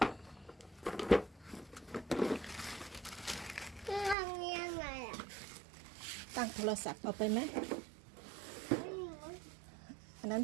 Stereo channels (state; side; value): drops out; left; at 4.2 s